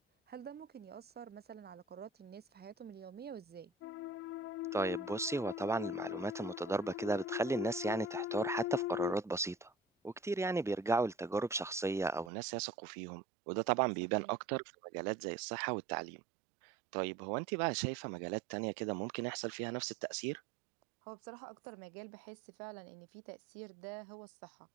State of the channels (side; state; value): left; drops out; at 12.3 s